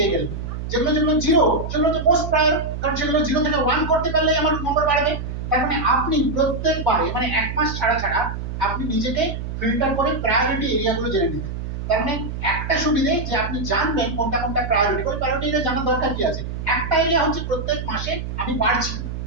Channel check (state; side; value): noise; right; hum, 6 dB below the sound